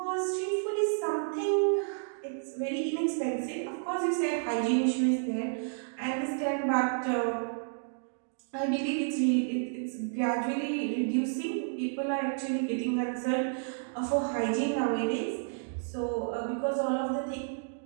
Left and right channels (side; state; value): left; silent; digital silence